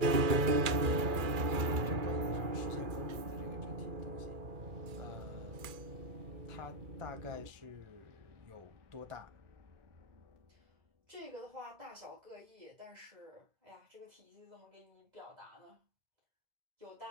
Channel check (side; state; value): left; late; 2.3 ms